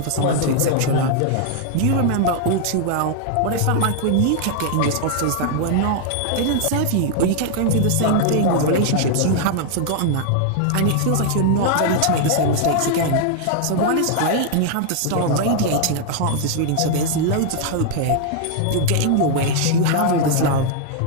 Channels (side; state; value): both; different; correlation 0.00